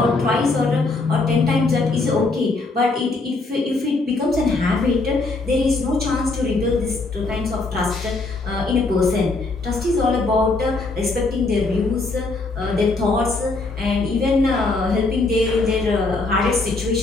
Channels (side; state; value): right; quieter; 3.5 dB